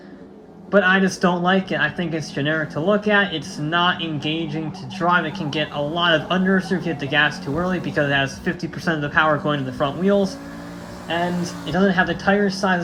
But I just don't like it. I think it's generic to look at. It's not engaging to drive. It can get a lot of understeer if you hit the gas too early, because it has 50% of the power going to the front wheels. And it doesn't have the tire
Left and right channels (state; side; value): identical; both; correlation 1.00